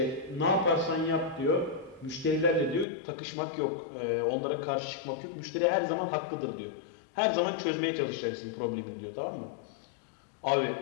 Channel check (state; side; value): drops out; right; at 2.9 s